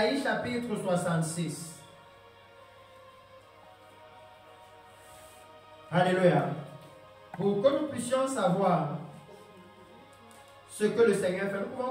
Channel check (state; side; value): identical; both; correlation 1.00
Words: chapitre 66. Alléluia. Pour que nous puissions savoir ce que le Seigneur fait, nous pouvons